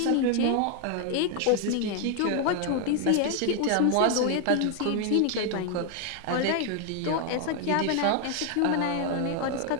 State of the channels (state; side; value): different; both; correlation 0.00